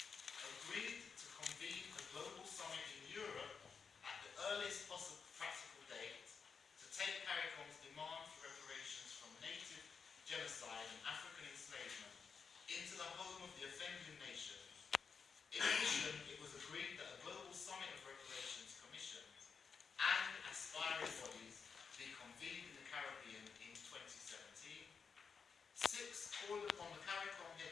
Agreed to convene a global summit in Europe at the earliest possible practical date to take CARICOM's demand for reparations from native genocide and African enslavement into the home of the offending nations. In addition, it was agreed that a global summit of reparations commissions and aspiring bodies be convened in the Caribbean in 2017. 6. Called upon the CARICOM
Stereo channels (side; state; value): right; quieter; 5.8 dB